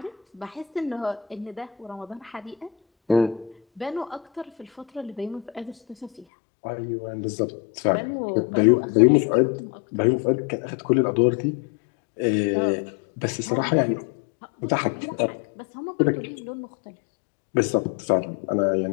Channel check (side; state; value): right; drops out; at 6.2 s